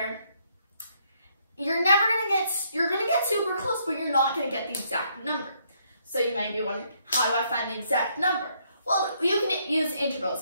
you're gonna get super close, but you're not gonna get the exact number. So you might be wondering, how do I find the exact number? Well, you can use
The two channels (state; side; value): inverted; both; correlation -0.71